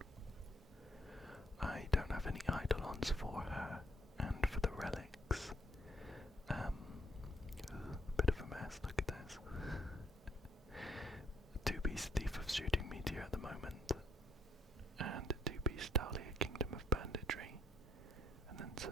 I don't have any Eidolons for her, and for the relics, bit of a mess. Look at this. 2-piece Thief of Shooting Meteor at the moment, and 2-piece Dahlia Kingdom of Banditry, and then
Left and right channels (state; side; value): normal; both; correlation 0.70